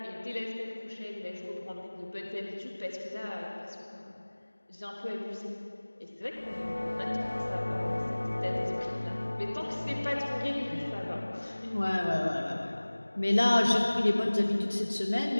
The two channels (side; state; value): both; inverted; correlation -1.00